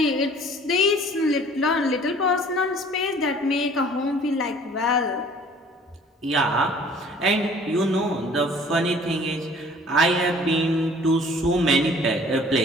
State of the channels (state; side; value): normal; both; correlation 0.52